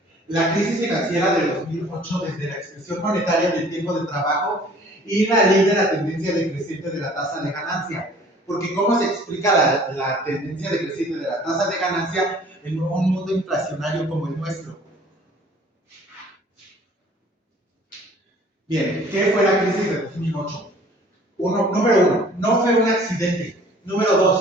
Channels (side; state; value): both; normal; correlation 0.52